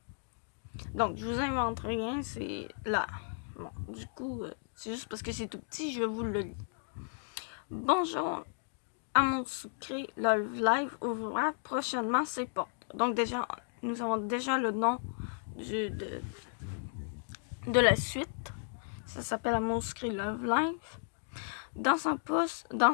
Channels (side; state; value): right; silent; digital silence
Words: je vous invente rien, c'est là. Bon, du coup, c'est juste parce que c'est tout petit, je vous le lis. Bonjour, Amour sucré, le live ouvrira prochainement ses portes. Donc, déjà, nous avons déjà le nom de la suite. Ça s'appelle Amour sucré Love Live. Dans